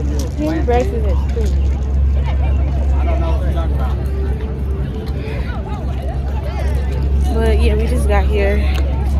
But yeah, we just got here.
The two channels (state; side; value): identical; both; correlation 1.00